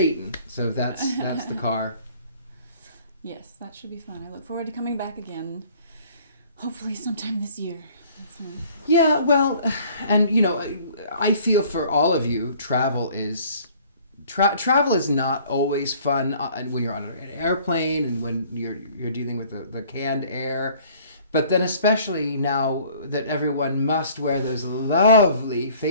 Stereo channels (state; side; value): inverted; both; correlation -0.54